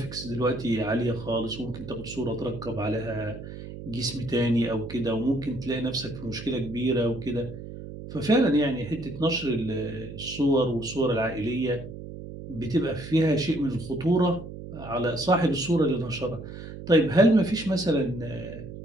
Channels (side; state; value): right; noise; hum, 11 dB below the sound